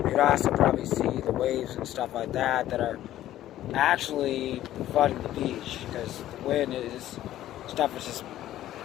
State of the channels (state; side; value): quieter; right; 13.3 dB